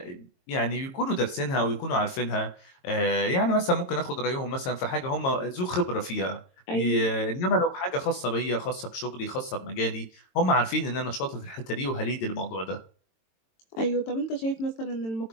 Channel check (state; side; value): late; right; 22 ms